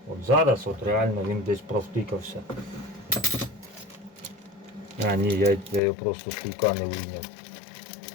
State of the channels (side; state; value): right; drops out; at 5.8 s